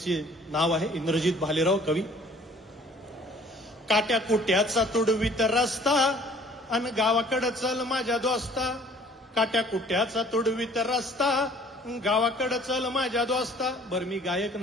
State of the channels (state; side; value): normal; both; correlation 0.54